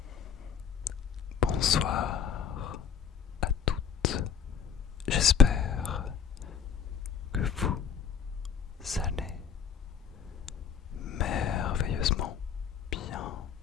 Bonsoir à toutes. J'espère que vous allez merveilleusement bien,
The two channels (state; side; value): quieter; right; 7.2 dB